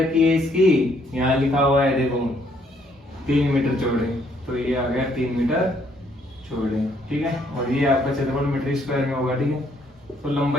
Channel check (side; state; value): both; normal; correlation 0.68